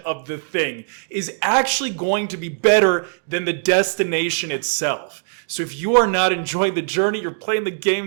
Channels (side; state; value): left; silent; digital silence